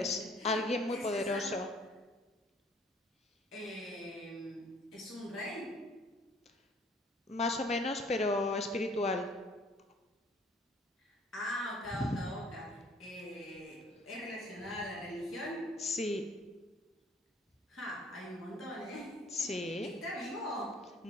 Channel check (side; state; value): both; normal; correlation 0.57